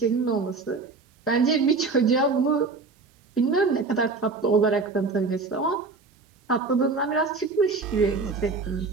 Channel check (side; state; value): left; quieter; 4.1 dB